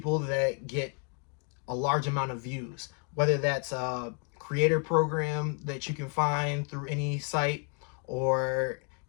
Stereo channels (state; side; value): quieter; right; 38.7 dB